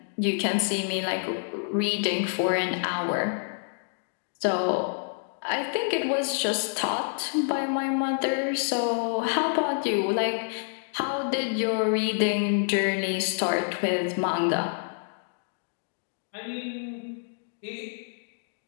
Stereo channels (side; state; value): right; silent; digital silence